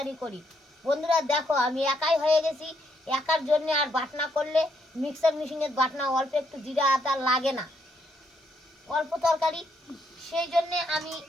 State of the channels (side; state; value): both; normal; correlation 0.74